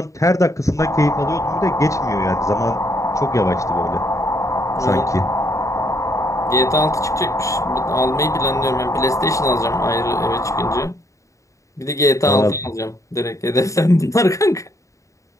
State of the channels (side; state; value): right; late; 0.15 ms